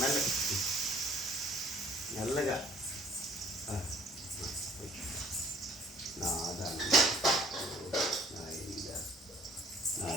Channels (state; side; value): normal; both; correlation 0.57